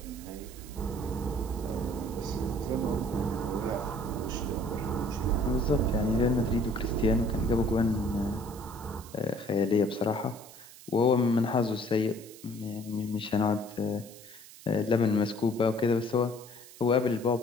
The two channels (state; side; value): noise; right; hiss, 19 dB below the sound